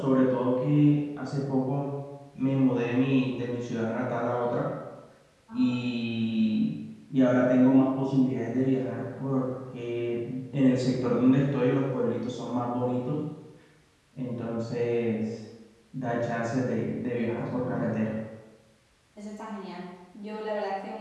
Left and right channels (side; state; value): both; identical; correlation 1.00